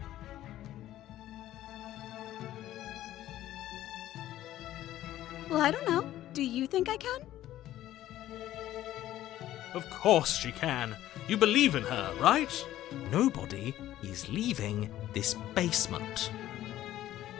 Well, I don't know. Do you think I can? Of course she can. You believe in her, right? Nobody is leaving this basement.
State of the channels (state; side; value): quieter; right; 13.6 dB